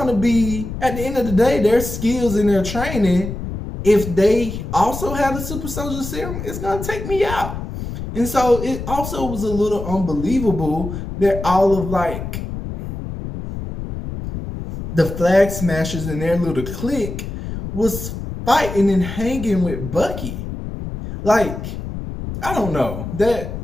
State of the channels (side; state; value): left; noise; rumble, 7 dB below the sound